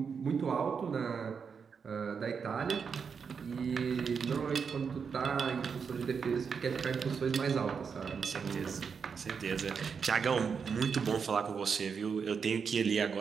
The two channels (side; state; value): left; quieter; 6.1 dB